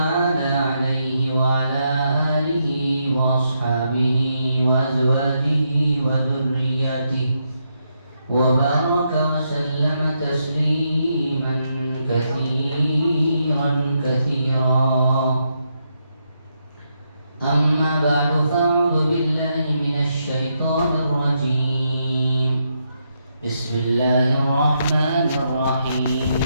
عليه وعلى آله وأصحابه وأزواجه وذرياته وبارك وسلم تسليما كثيرا أما بعد فأعوذ بالله من الشيطان الرجيم بسم الله الرحمن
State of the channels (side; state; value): both; inverted; correlation -0.80